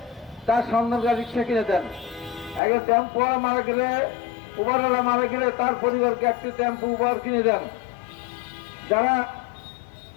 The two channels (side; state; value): right; drops out; at 2.6 s